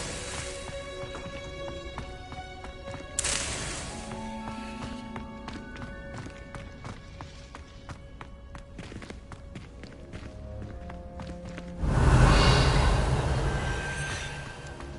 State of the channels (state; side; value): identical; both; correlation 1.00